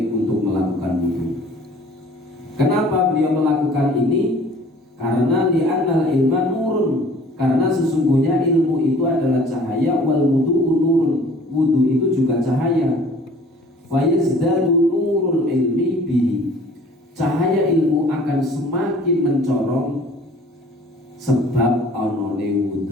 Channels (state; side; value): normal; both; correlation 0.51